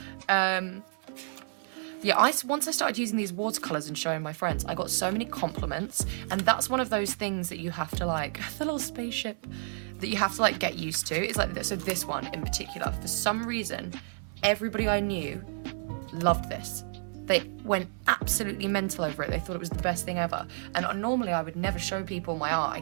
Yeah, once I started using these watercolors and showing my friends, I got so many compliments, and that's one of those things that you have to like, the little spaceship, that you have to like get used to. It's like, so this one in particular, for some reason, everybody I knew loved this. They went absolutely mental over it. They thought it was the best thing ever. And normally I would never show people my art. I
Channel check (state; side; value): silent; left; 55 dB below the other